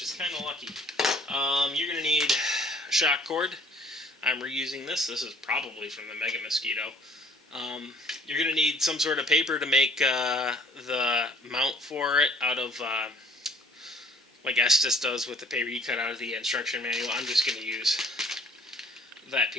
is kind of lucky. You're going to need a shock cord. I'm reusing this. This is probably from the Mega Mosquito. You're going to need some sort of paper to make the mount for it out of, like Estes does with the paper you cut out of the instruction manual. I'm just going to use that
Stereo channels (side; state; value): both; normal; correlation 0.56